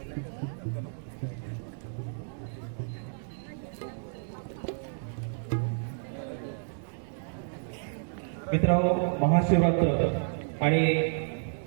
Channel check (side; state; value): left; silent; digital silence